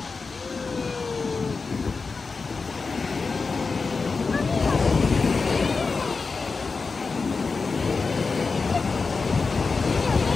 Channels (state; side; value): quieter; right; 4.4 dB